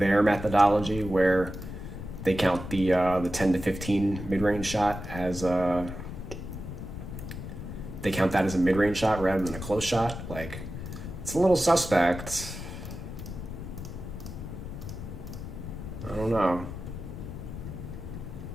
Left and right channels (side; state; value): left; noise; rumble, 9 dB below the sound